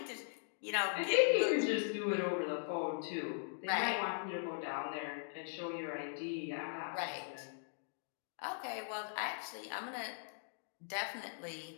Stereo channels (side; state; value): right; silent; digital silence